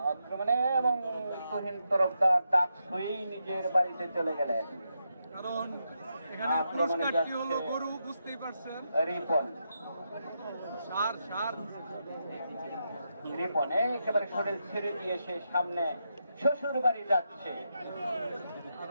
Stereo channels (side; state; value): both; inverted; correlation -0.84